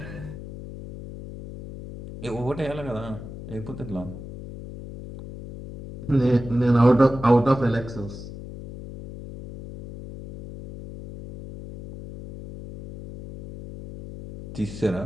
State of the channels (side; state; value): left; noise; hum, 12 dB below the sound